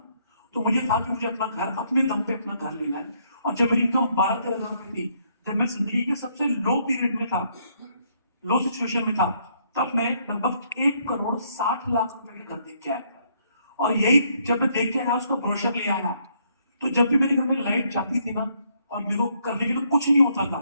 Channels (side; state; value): both; inverted; correlation -0.71